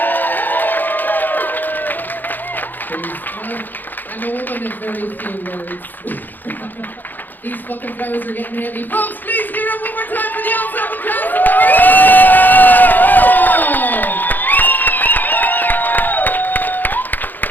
I'm a woman of very few words. These fucking flowers are getting heavy. Folks, please give it up one more time for the ensemble cast of the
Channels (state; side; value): late; right; 0.087 ms